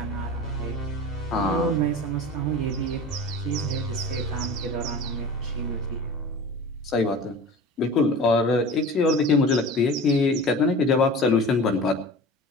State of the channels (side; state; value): both; normal; correlation 0.36